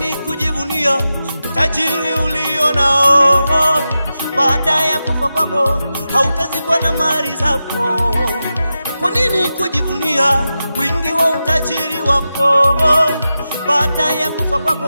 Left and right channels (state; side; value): inverted; both; correlation -0.91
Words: kujivunia utajiri ulio nao? Baada ya kufa kwako hautazikwa na mali zako. Kwa nini kujivunia wingi wa utajiri wako? Baada ya kufa